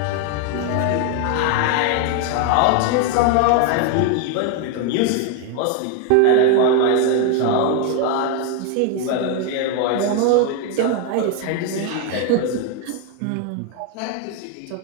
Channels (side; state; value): both; different; correlation 0.01